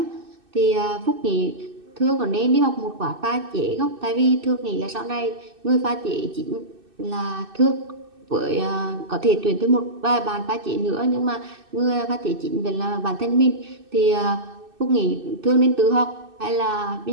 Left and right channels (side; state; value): left; late; 2.6 ms